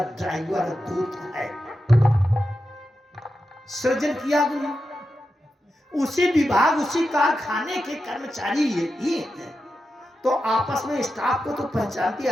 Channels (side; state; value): both; normal; correlation 0.90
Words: ड्राइवर दूत है। सृजन किया अग्नि, उसी विभाग उसी कारखाने के कर्मचारी ये ही है। तो आपस में स्टाफ को तो पहचानती